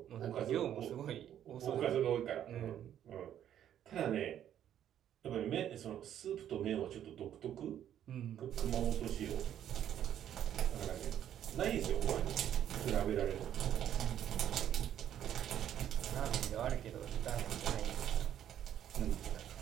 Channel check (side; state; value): left; quieter; 10.5 dB